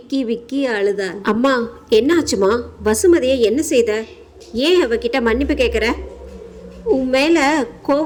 அழுதாள். அம்மா, என்ன ஆச்சுமா? வசுமதியை என்ன செய்த? ஏன் அவகிட்ட மன்னிப்பு கேட்குற? உன் மேலே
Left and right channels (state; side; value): identical; both; correlation 1.00